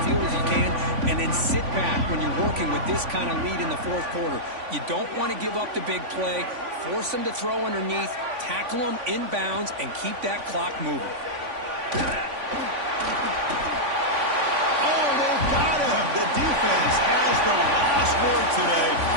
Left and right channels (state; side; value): late; left; 3.5 ms